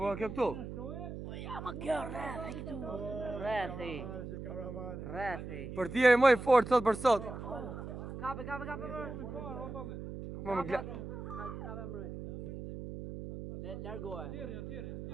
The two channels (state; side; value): noise; right; hum, 8 dB below the sound